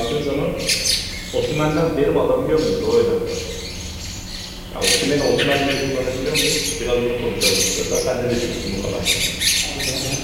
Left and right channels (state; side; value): identical; both; correlation 1.00